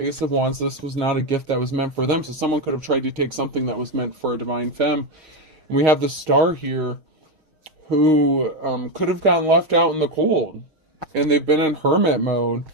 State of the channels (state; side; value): late; left; 6.4 ms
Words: of Wands, this was not a gift that was meant for them. So someone could have tried to take something that was meant for a divine femme. And we have the Star here who could have gotten left out in the cold. And they've been in hermit mode.